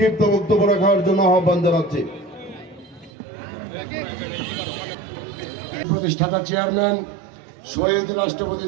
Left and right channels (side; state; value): left; drops out; at 3.1 s